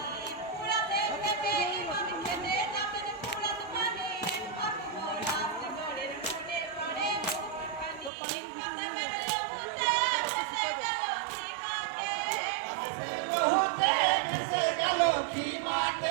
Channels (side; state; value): left; drops out; at 8.1 s